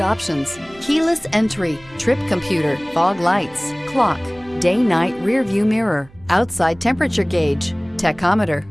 options: keyless entry, trip computer, fog lights, clock, day-night rear-view mirror, outside temperature gauge, tachometer,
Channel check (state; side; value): noise; right; hum, 26 dB below the sound